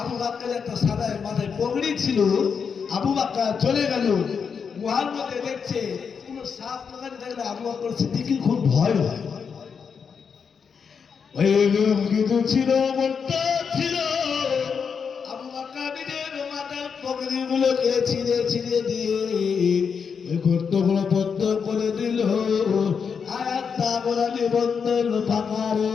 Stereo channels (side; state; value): right; quieter; 6.3 dB